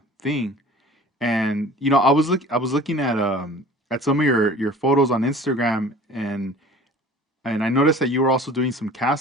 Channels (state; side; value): normal; both; correlation 0.44